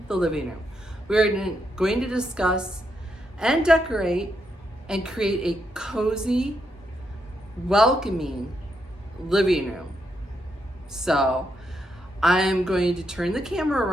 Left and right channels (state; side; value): normal; both; correlation 0.80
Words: the living room. We are going to discuss and decorate and create a cozy, welcoming living room. So I'm going to turn the camera